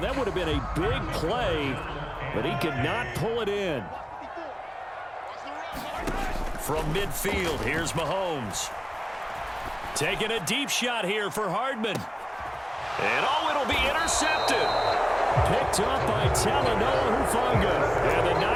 That would have been a big play, but he could not pull it in. From midfield, here's Mahomes. Taking a deep shot here for Hardman. And it'll be intercepted. Picked up by Talanoa Hufanga. And the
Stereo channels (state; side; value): identical; both; correlation 1.00